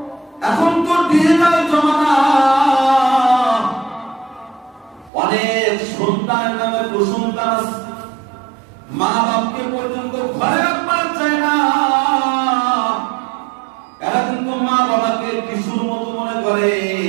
এখন তো ডিজিটাল জমানা, অনেক সন্তানের নামে কুসন্তান আছে, মা বাপকে পর্যন্ত ঘরে রাখবার চায় না। এরা কিন্তু মা বাবাকে কিশোর মতো মনে করে,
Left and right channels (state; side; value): drops out; left; at 5.1 s